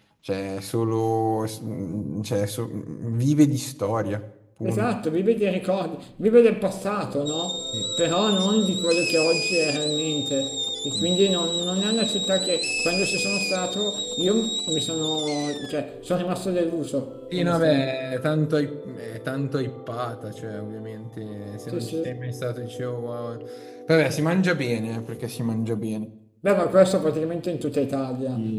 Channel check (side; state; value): both; identical; correlation 1.00